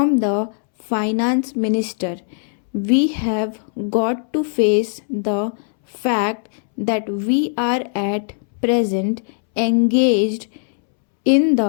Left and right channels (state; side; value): silent; right; 66 dB below the other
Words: the finance minister. We have got to face the fact that we are at present engaged in